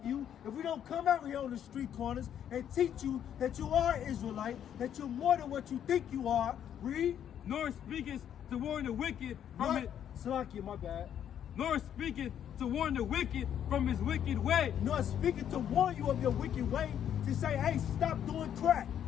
you, if we don't come out here on the street corners and teach you that you are Israelite, that you're more than what you think you are, read. Nor speakest to warn the wicked from it. Salakia, my bad. Nor speaketh to warn the wicked from his wicked way. Nor speaking to warn you of your wicked way, to say, hey, stop doing crack.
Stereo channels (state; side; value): quieter; right; 9.6 dB